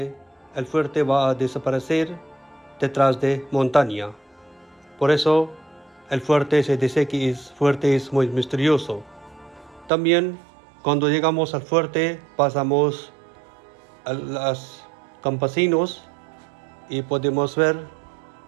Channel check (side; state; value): left; drops out; at 9.9 s